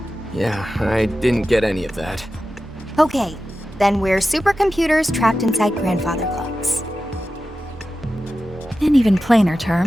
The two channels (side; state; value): both; normal; correlation 0.93